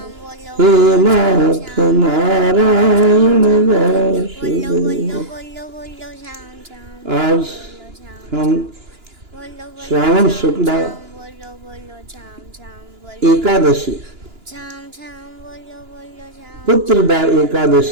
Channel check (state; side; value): late; left; 2.9 ms